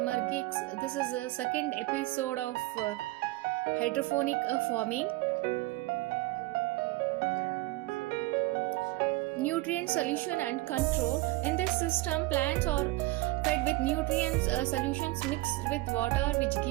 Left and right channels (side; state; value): left; quieter; 20.1 dB